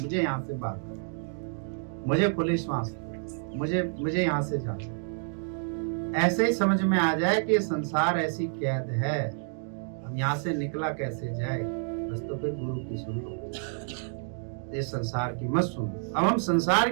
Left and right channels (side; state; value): left; silent; digital silence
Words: यहाँ से बात कर, मुझे पुलिस वास्ते, मुझे यहाँ से जाना। ऐसे ही समझ में आ जाए कि संसार ऐसी कैद है, हम यहाँ से निकला कैसे जाए, बस तो फिर गुरु की सुन लो, इस संसार की मत सुनो। अब हम संसार